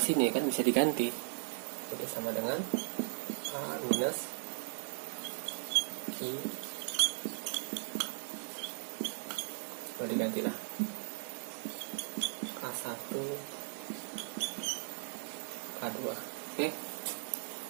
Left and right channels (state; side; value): silent; left; 53 dB below the other